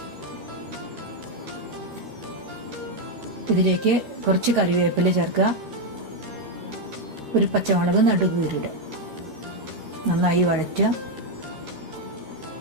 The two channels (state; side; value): late; left; 13 ms